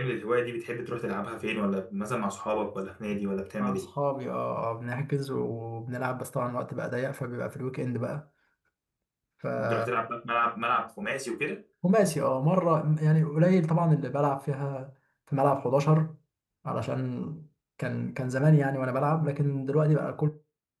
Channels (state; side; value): identical; both; correlation 1.00